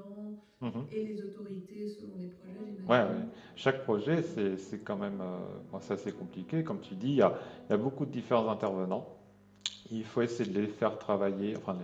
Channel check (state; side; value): identical; both; correlation 1.00